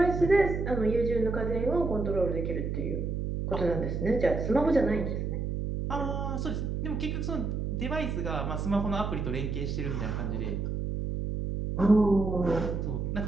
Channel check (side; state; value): right; noise; hum, 2 dB below the sound